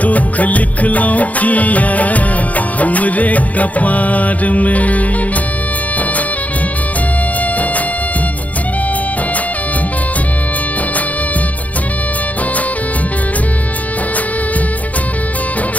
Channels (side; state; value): right; late; 0.072 ms